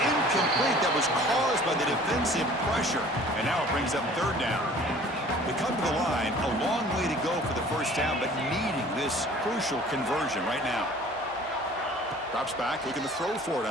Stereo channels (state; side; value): normal; both; correlation 0.49